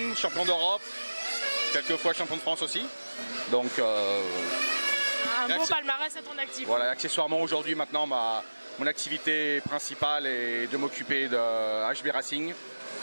champion d'Europe, quelques fois champion de France aussi. Donc, un beau palmarès à ton actif. Voilà, accessoirement aujourd'hui maintenant mon activité principale est de m'occuper de HB Racing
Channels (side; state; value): both; inverted; correlation -1.00